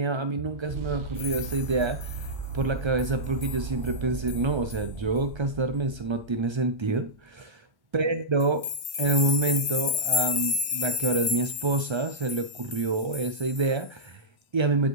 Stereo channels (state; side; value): late; left; 1.1 ms